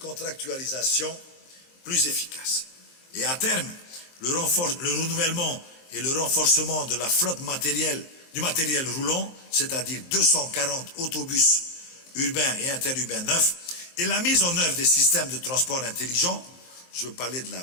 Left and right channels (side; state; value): right; late; 23 ms